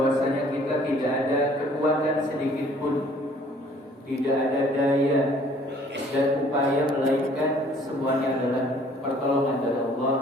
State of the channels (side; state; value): both; normal; correlation 0.57